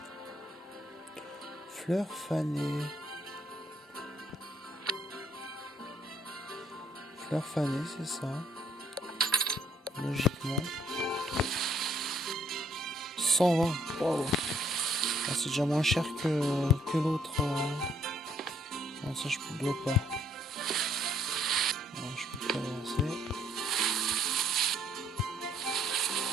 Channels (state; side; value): normal; both; correlation 0.67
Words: Fleurs fanées. Fleurs fanées, c'est ça. Logiquement. 120. Wow. Ah, c'est déjà moins cher que l'autre. Non, ça je ne dois pas. Non, je peux pas avancer.